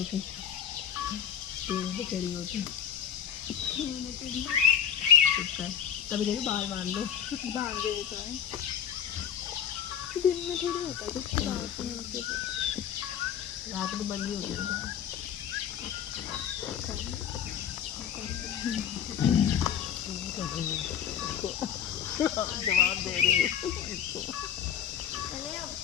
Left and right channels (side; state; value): right; quieter; 9.0 dB